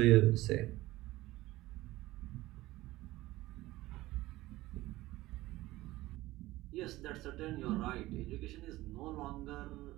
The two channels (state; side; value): quieter; left; 17.7 dB